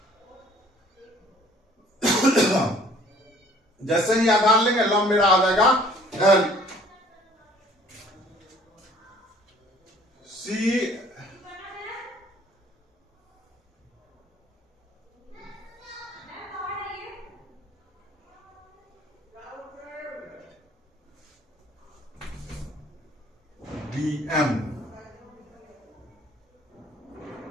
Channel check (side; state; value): both; normal; correlation 0.55